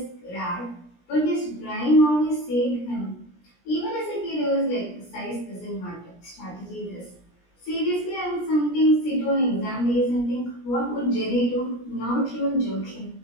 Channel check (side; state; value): right; late; 17 ms